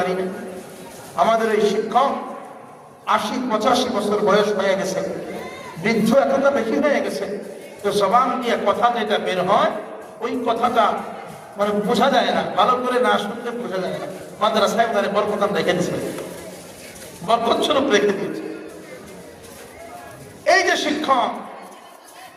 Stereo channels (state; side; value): identical; both; correlation 1.00